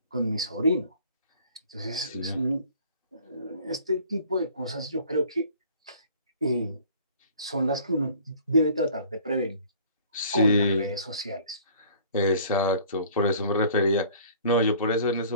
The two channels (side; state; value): both; inverted; correlation -0.52